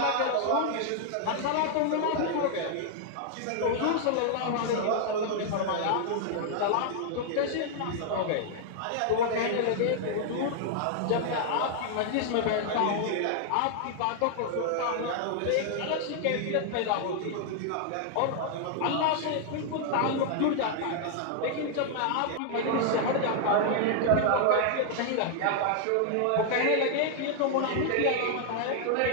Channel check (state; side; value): different; both; correlation 0.00